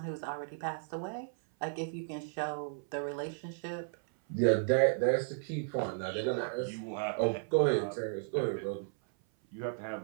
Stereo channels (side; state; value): left; silent; 55 dB below the other